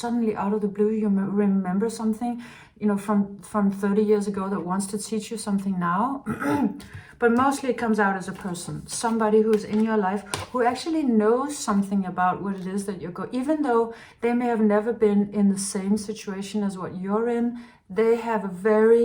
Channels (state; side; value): identical; both; correlation 1.00